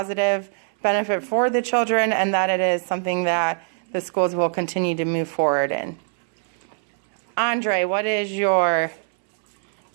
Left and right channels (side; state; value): left; silent; 61 dB below the other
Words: benefit for the children and that it is something that the schools will continue to move forward in. Andre, what is your